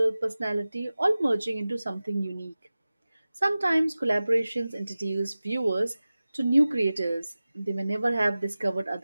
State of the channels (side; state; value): both; inverted; correlation -0.96